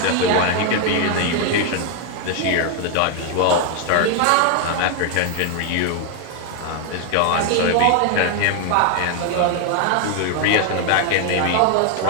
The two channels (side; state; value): both; different; correlation 0.01